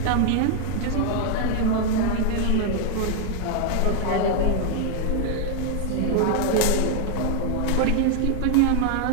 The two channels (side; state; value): both; different; correlation 0.00